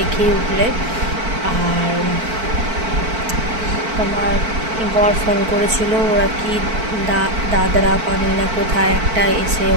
উঠলে। আর তোমার বর ফোন করেছিল, ওরা কি দাদরা পানি না কোথায় একটা এসে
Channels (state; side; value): late; left; 4.5 ms